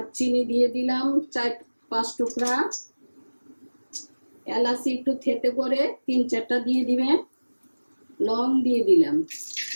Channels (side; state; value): both; inverted; correlation -1.00